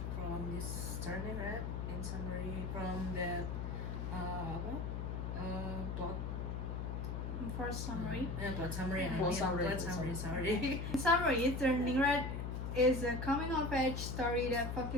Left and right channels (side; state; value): left; noise; hum, 3 dB below the sound